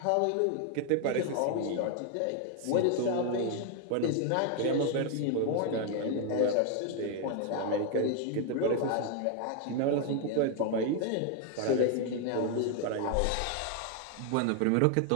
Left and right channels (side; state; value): both; different; correlation 0.00